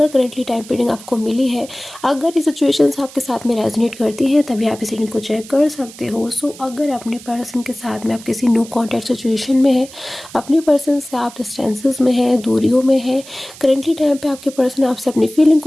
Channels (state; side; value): noise; right; hiss, 18 dB below the sound